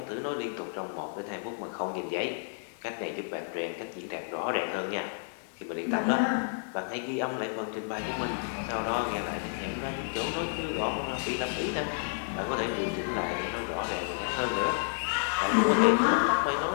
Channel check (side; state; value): right; silent; digital silence